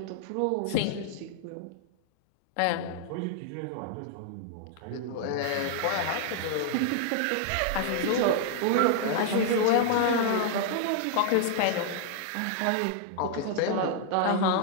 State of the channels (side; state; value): both; different; correlation 0.00